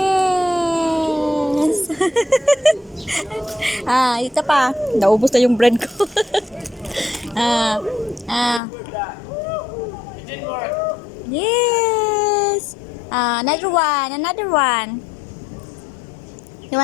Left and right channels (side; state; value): right; drops out; at 8.6 s